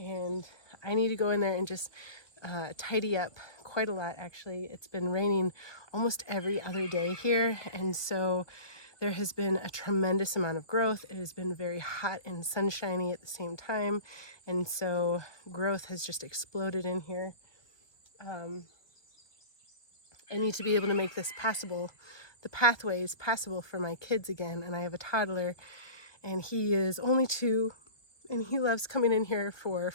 I need to go in there and just tidy up quite a lot, actually. It's been raining almost every other day here, and so there has been a tremendous amount of growth. It has been very hot and sunshiny at the same time, and so growth has just exploded in here. I need to be able to make this passable, the pathways passable for my kids again, and I have a toddler, and he is only 2, and he loves coming in here for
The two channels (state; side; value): late; right; 1.4 ms